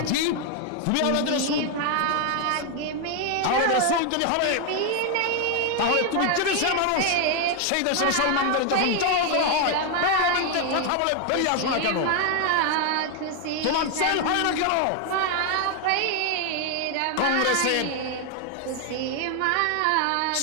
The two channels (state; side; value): different; both; correlation 0.01